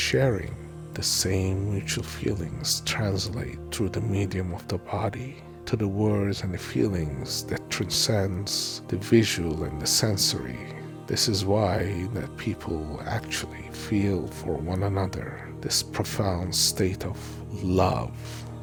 The same mutual feelings translate through the medium of the body to the words and the feelings that transcends the visual and the sensory. This is why that people actually feel for one another this profound state of love.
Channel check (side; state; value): both; identical; correlation 1.00